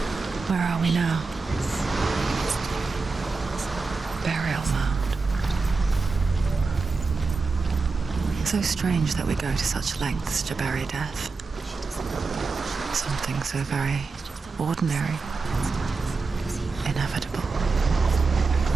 Where are we now? Burial mound. So strange that we go to such lengths to bury death. Something so very ordinary, inevitable.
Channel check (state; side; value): quieter; left; 4.2 dB